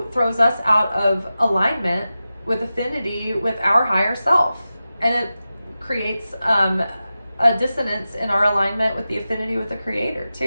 throws us out of alignment with affinity with our higher self, and it creates a dissonance in our alignment with the affinity with the Creator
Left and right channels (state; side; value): inverted; both; correlation -0.93